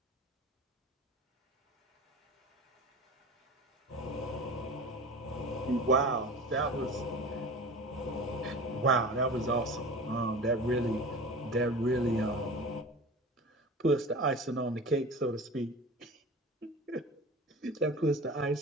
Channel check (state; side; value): normal; both; correlation 0.36